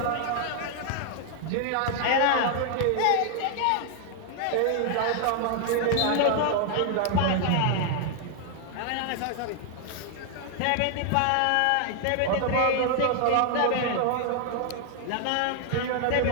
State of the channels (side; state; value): both; different; correlation 0.00